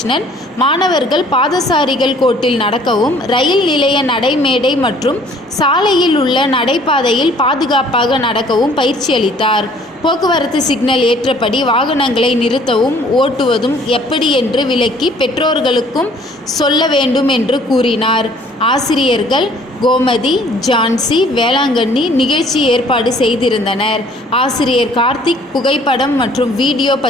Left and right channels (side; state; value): both; normal; correlation 0.57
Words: மாணவர்கள் பாதசாரிகள் கோட்டில் நடக்கவும், ரயில் நிலைய நடைமேடை மற்றும் சாலையில் உள்ள நடைபாதையில் பாதுகாப்பாக நடக்கவும் பயிற்சி அளித்தார். போக்குவரத்து சிக்னல் ஏற்றபடி வாகனங்களை நிறுத்தவும் ஓட்டுவதும் எப்படி என்று விளக்கி பெற்றோர்களுக்கும் சொல்ல வேண்டும் என்று கூறினார். ஆசிரியர்கள் கோமதி, ஜான்சி, வேளாங்கண்ணி நிகழ்ச்சி ஏற்பாடு செய்திருந்தனர். ஆசிரியர் கார்த்திக் புகைப்படம் மற்றும் வீடியோ